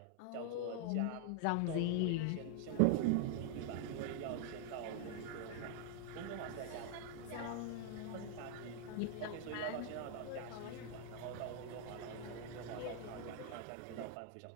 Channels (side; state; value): both; different; correlation 0.00